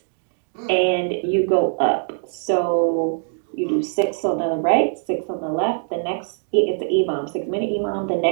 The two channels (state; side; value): silent; left; 56 dB below the other